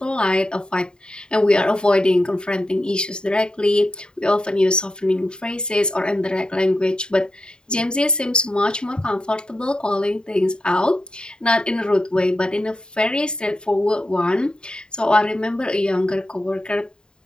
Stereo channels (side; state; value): right; late; 0.049 ms